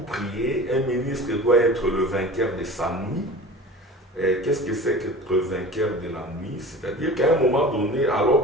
prier. Un ministre doit être le vainqueur de sa nuit. Qu'est-ce que c'est qu'être vainqueur de la nuit? C'est-à-dire qu'à un moment donné, alors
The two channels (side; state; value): both; normal; correlation 0.37